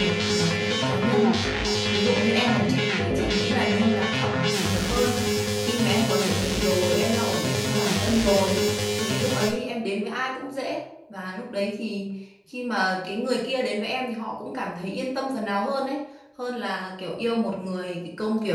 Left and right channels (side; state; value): both; identical; correlation 1.00